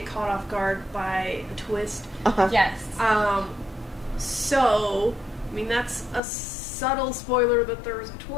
caught off guard by a twist. Yes. So, I mean, that's a subtle spoiler that there was a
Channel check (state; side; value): drops out; right; at 6.2 s